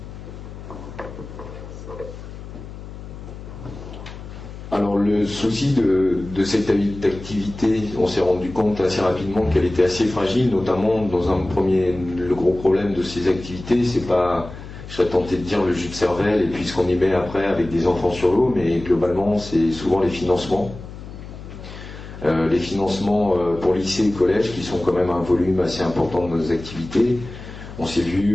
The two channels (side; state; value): left; noise; hum, 13 dB below the sound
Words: Alors le souci de cette activité, on s'est rendu compte assez rapidement qu'elle était assez fragile, notamment le gros problème de ces activités, c'est pas, je serais tenté de dire, le jus de cervelle et puis ce qu'on y met après avec des enfants sur l'eau, mais globalement c'est souvent les financements. Les financements pour lycée et collège qui sont quand même un volume assez important de nos activités. On s'est